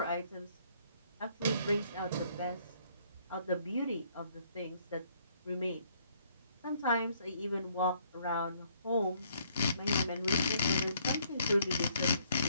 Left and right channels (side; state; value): both; inverted; correlation -0.66